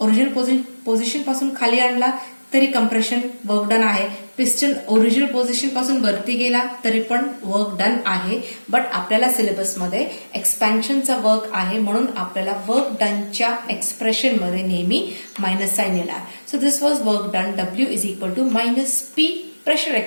ओरिजिनल पोझिशन पासून खाली आणला तरी कंप्रेशन वर्क डन आहे. पिस्टन ओरिजिनल पोझिशन पासून वरती गेला तरी पण वर्क डन आहे. बट आपल्याला सिलेबसमध्ये एक्सपॅन्शनचा वर्क आहे म्हणून आपल्याला वर्क डनच्या एक्सप्रेशन मध्ये नेहमी मायनस साइन येणार. So this was work done. W is equal to minus P pressure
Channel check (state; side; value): inverted; both; correlation -1.00